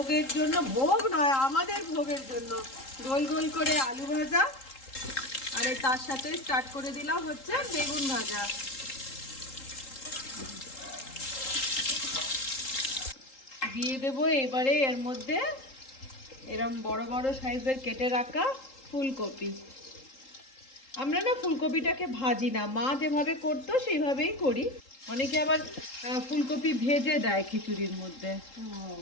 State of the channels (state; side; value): late; right; 3.8 ms